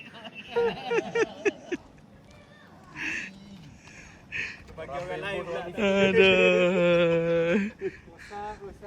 Bagi orang lain pula. Aduh.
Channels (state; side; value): identical; both; correlation 1.00